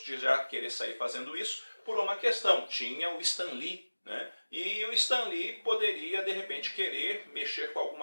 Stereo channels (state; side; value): inverted; both; correlation -1.00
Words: de já querer sair fazendo isso por uma questão. Tinha o Stan Lee, né? E o Stan Lee poderia, de repente, querer mexer com